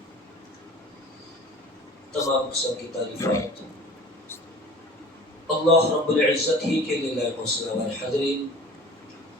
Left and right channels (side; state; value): both; normal; correlation 0.42